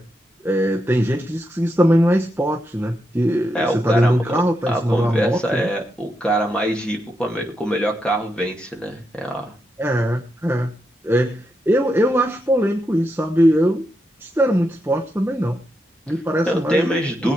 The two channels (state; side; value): normal; both; correlation 0.84